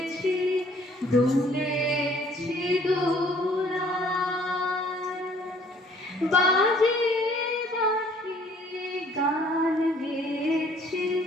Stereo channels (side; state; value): both; normal; correlation 0.59